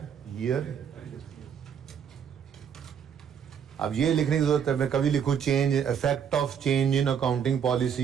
ईयर। अब ये लिखने की जरूरत है, मैं कभी लिखूं change, effect of change in accounting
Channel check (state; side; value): quieter; left; 7.8 dB